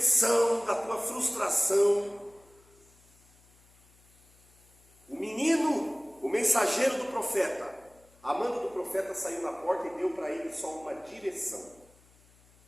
da tua frustração, o menino, o mensageiro do profeta, a manda do profeta saiu na porta e deu para ele só uma direção.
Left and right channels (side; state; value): left; noise; hum, 29 dB below the sound